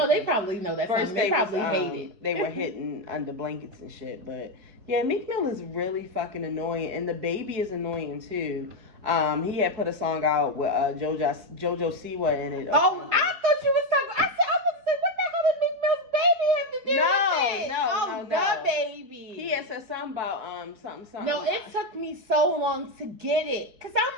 they probably know that. First, they probably hate it. They were hitting under blankets and shit. But yeah, Meek Mill is really fucking annoying, and the baby is annoying too. He had put a song out with Jojo Siwa in it. Oh, I thought you was talking. I was going to say, what the hell did Meek Mill's baby have to do with it? No. The baby. He had said something about something. No, it took me so long to get it. Because I'm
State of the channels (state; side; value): late; left; 4.7 ms